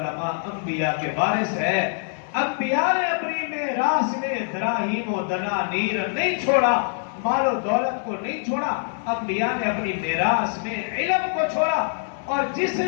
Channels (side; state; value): right; silent; 58 dB below the other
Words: انبیاء کے وارث ہے، انبیاء نے اپنی میراث میں دراہیم و دنانیر نہیں چھوڑا، مال و دولت کو نہیں چھوڑا، انبیاء نے اپنی میراث میں علم کو چھوڑا، اور جس